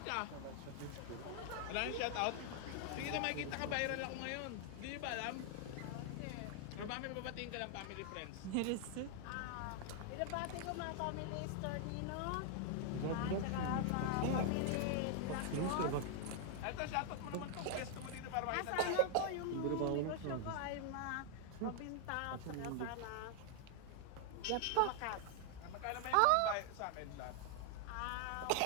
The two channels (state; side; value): different; both; correlation 0.00